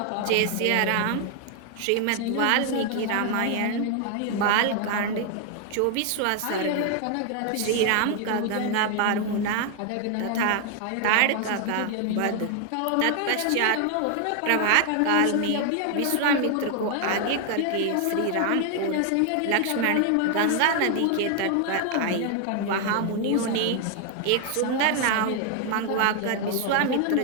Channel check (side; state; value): both; different; correlation 0.00